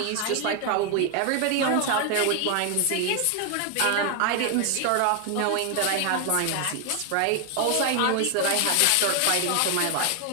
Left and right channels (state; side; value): different; both; correlation 0.01